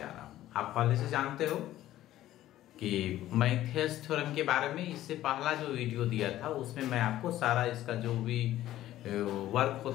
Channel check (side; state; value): right; quieter; 13.9 dB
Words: रहा हूँ। आप पहले से जानते हो कि मैं थेस थ्योरम के बारे में इससे पहला जो वीडियो दिया था उसमें मैं आपको सारा इसका जो भी वर्क